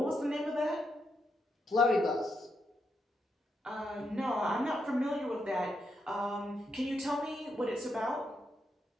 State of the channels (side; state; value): both; normal; correlation 0.81